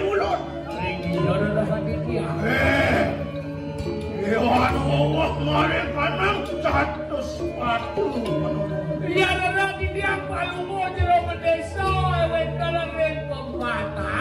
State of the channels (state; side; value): identical; both; correlation 1.00